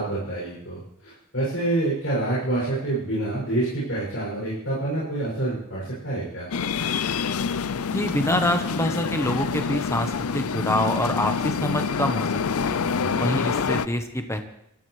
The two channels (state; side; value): normal; both; correlation 0.34